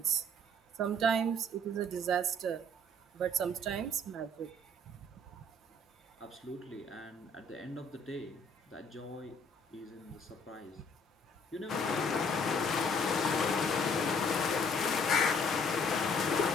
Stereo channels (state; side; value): normal; both; correlation 0.60